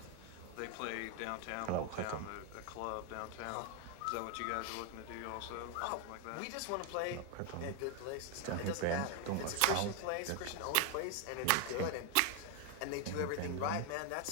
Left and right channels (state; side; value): different; both; correlation 0.01